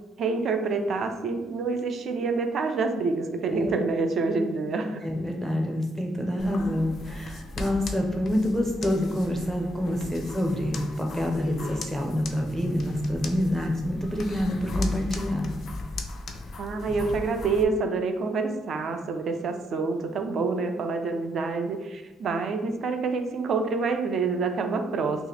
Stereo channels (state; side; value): normal; both; correlation 0.75